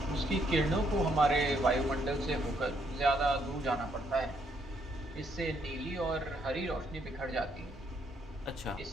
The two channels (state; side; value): normal; both; correlation 0.73